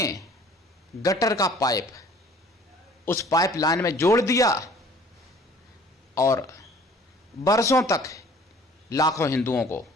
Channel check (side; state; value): both; normal; correlation 0.52